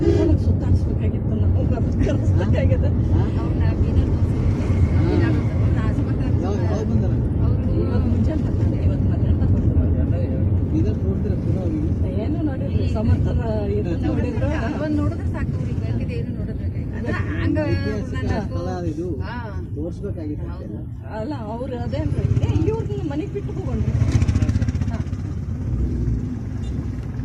ಸುತ್ತಾಡಿಸ್ಬೇಕಾಗಿತ್ತು ನಾವು ಕಲಿಸ್ಬೇಕಾಗಿದೆ ಅವ್ರನ್ನ ಬೀದರ್ ಇವಾಗ ಮುಂಜಾನೆ ಬರ್ತಾರೆ, ಇವತ್ತು ಮಧ್ಯಾಹ್ನ ಏನು ನೋಡಿರಿ ಸಮರ್ಥನ ನೋಡಿದ್ರು ಒಂದು ನೋಡಿದ್ರೆ ಸಾಕು ಅವ್ರಿಗೆ ಬೇಕಿದೆ ಏನು ನೋಡೋದ್ಬೇಕಾಗಿತ್ತು ಅಲ್ಲ ಅವ್ರು ಅದೇನ್ರಿ ಇವ್ರನ್ನ ಮನೆಗೆ ಬಿಟ್ಟು ಹೋಗೋಣ್ರಿ.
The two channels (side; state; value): both; identical; correlation 1.00